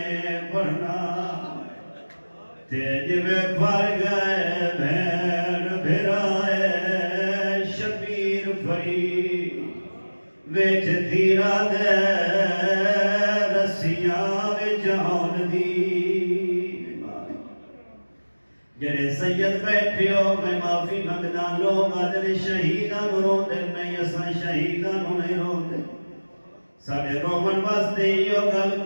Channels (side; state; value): both; inverted; correlation -1.00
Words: پڑھنا تیج میں پھر گئے بھین بھرائے شبیر پھری ویچ دھیرا دے رسیاں ویچ آن دی جڑے سید بیٹھے ہو میں معافی منگدا لوگ آدھے شہیداں نوں روندے نہیں اساں شہیداں نوں نہیں روندے ساڈے رومن واسطے یہ گل